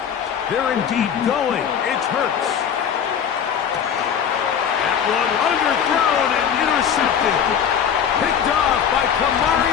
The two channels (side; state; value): right; quieter; 8.1 dB